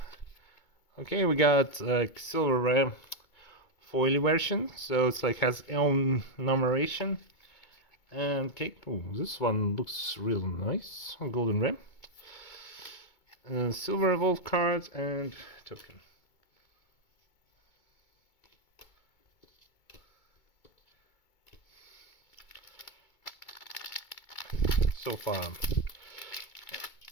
okay, we got like silver ram foily version, so it's like has own numeration. And okay, oh, this one looks real nice. Golden ram, silver evolve card, and token. So far,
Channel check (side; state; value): right; late; 2.2 ms